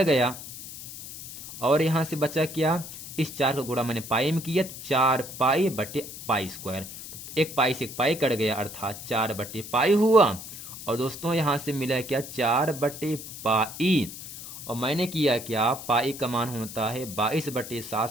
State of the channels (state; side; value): noise; left; hiss, 11 dB below the sound